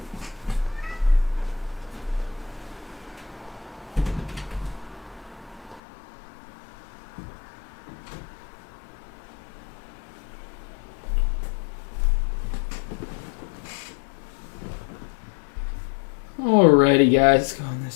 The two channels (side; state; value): right; drops out; at 5.8 s